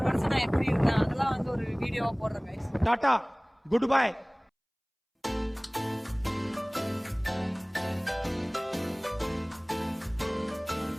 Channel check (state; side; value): identical; both; correlation 1.00